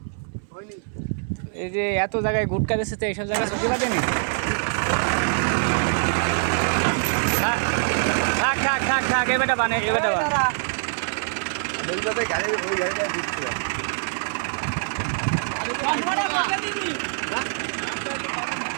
হয়নি। এই যে এত জায়গায় গুটকা দিচ্ছে তো এইসব জায়গায় প্রতিবাদ নেই। থাক এবারটা বানে এবারটা বান। ওই গাড়িটা দিচ্ছিল।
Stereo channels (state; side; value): silent; left; 62 dB below the other